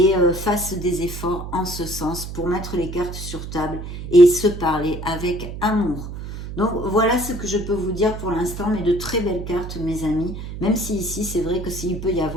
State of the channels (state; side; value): noise; right; hum, 8 dB below the sound